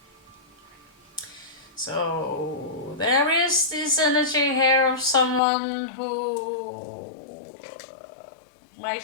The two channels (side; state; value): right; drops out; at 5.4 s